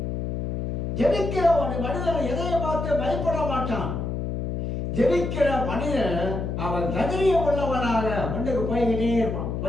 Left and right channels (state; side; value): noise; left; hum, 2 dB below the sound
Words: ஜெபிக்கிறவனுடைய மனிதன் எதையும் பார்த்து பயப்பட மாட்டான். ஜெபிக்கிற மனிதன் அவன் தைரியம் உள்ளவனாக முன்னுக்கு போய்கிட்டே